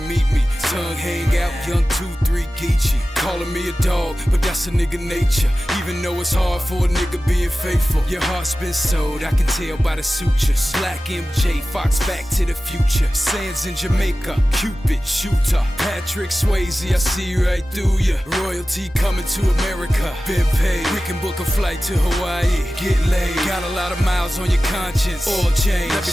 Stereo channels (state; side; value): normal; both; correlation 0.95